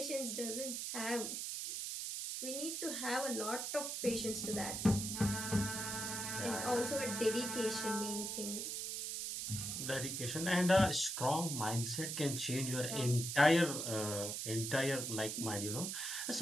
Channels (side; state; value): right; noise; hiss, 3 dB below the sound